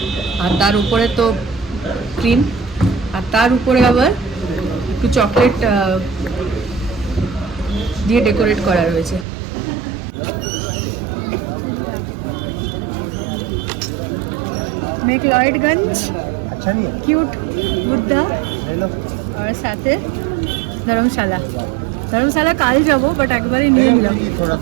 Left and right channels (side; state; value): left; drops out; at 9.2 s